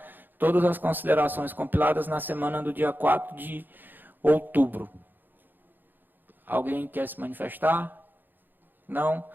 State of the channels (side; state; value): left; late; 0.091 ms